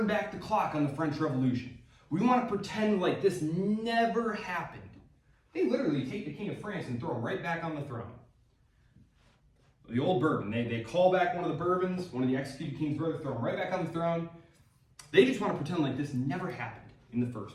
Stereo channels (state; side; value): identical; both; correlation 1.00